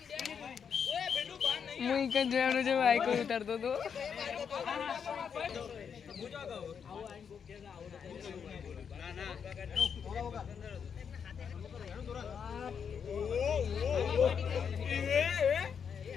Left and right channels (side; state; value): right; quieter; 7.0 dB